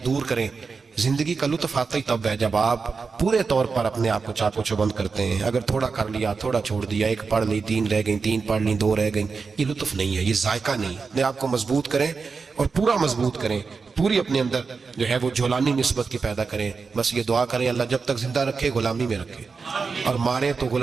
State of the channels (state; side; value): quieter; left; 4.8 dB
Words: دور کریں. زندگی کا لطف آتا ہی تب ہے جب آپ پورے طور پر اپنے آپ کو چاق و چوبند کرتے ہیں. اگر تھوڑا کر لیا، تھوڑا چھوڑ دیا، 1 پڑھ لی 3 رہ گئیں، 3 پڑھ لی 2 رہ گئیں، یہ لطف نہیں ہے، یہ ذائقہ نہیں. اپنے آپ کو مضبوط کریں اور پورا مضبوط کریں، پوری اپنے اندر جو ہے وہ جولانی نسبت کی پیدا کریں. بس یہ دعا کریں اللہ جب تک زندہ رکھے غلامی میں رکھے، اور مارے تو